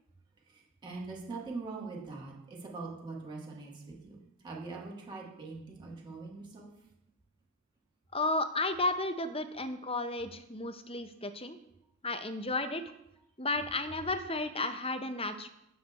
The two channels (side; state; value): both; normal; correlation -0.07